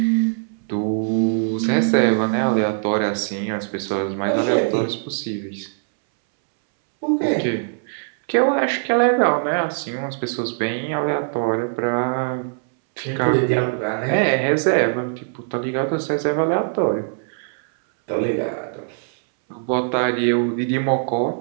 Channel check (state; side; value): silent; left; 65 dB below the other